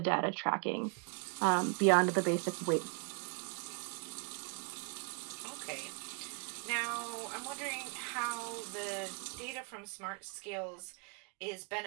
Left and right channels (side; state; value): left; quieter; 38.3 dB